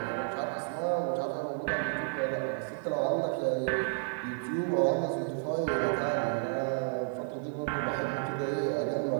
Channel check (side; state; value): left; silent; digital silence